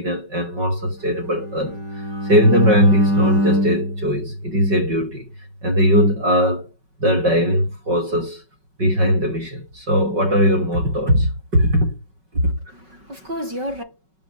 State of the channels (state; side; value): late; left; 5.3 ms